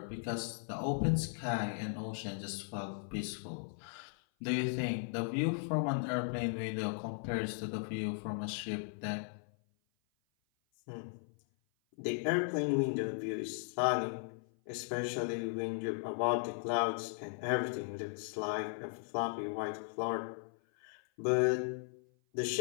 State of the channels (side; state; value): right; silent; 53 dB below the other